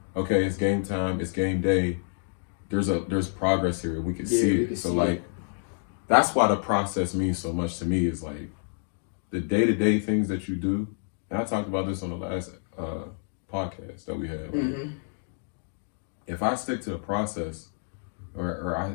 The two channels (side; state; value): right; silent; 59 dB below the other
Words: okay, it's game time, it's game day. There's progress here. We can see it. Like that's why the process means so much to me. Is like the day-to-day things that you do, and I talked about this on the last podcast that we had. Mm-hmm. If I stick to the process, or